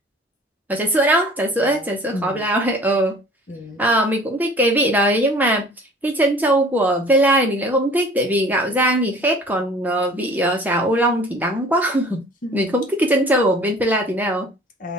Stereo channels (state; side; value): normal; both; correlation 0.48